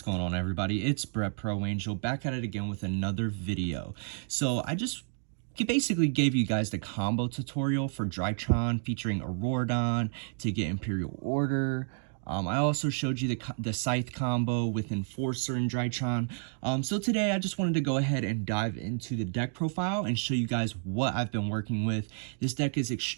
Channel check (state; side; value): silent; left; 57 dB below the other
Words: going on, everybody? It's Brett Pro Angel back at it again with another video. So I just basically gave you guys the combo tutorial for Drytron featuring Auroradon to get Imperial Order. I also showed you the Scythe combo with Enforcer and Drytron. So today I just wanted to go ahead and dive into the deck profile and show you guys what I've been working with. This deck is